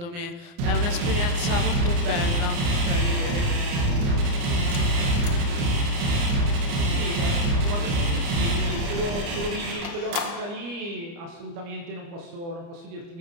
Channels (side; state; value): left; late; 29 ms